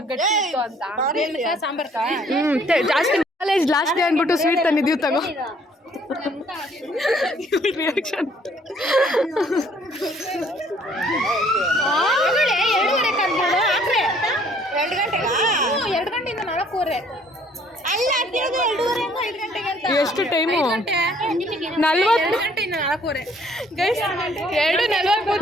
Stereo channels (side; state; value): both; normal; correlation 0.61